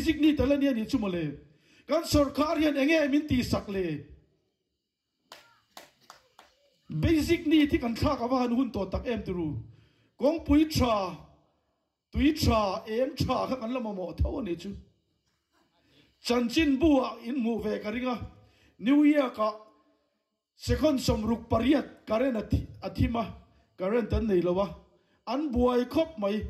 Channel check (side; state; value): both; identical; correlation 1.00